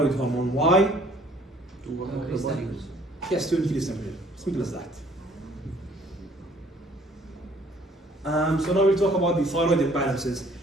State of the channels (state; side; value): normal; both; correlation 0.58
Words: hormone. Why? To work on the body. Yes, to increase temperature. Simple as that. So now we'll talk about the thyroid imbalances.